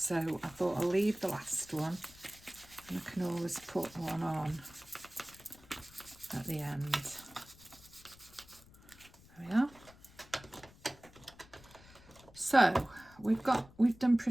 I thought I'll leave the last one, and I can always put one on at the end. There we are. So we've done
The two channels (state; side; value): noise; left; rumble, 23 dB below the sound